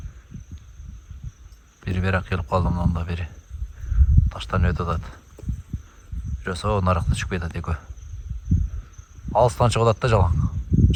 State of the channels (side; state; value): both; identical; correlation 1.00